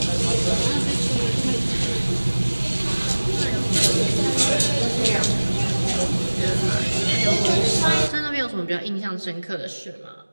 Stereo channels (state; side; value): inverted; both; correlation -1.00